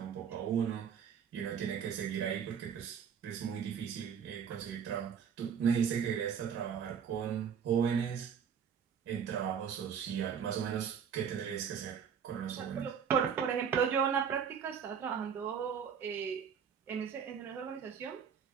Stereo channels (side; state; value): left; quieter; 7.5 dB